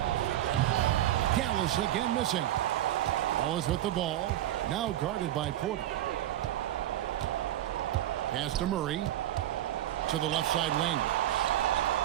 Gallus again missing. Wallace with the ball. Now guarded by Porter. Pass to Murray. To the left side wing.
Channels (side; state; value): left; quieter; 13.2 dB